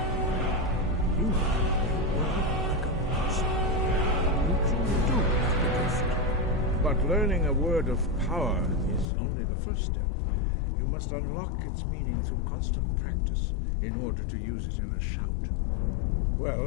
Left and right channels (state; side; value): drops out; right; at 9.1 s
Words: You have a word like a monster. You truly do have the gift. But learning a word of power is only the first step. You must unlock its meaning through constant practice in order to use it in a shout. Well,